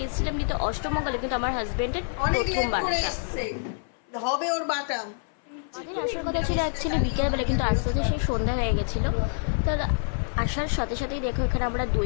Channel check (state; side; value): silent; right; 60 dB below the other